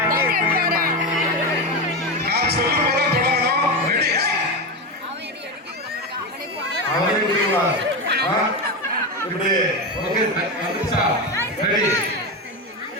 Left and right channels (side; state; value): both; normal; correlation 0.16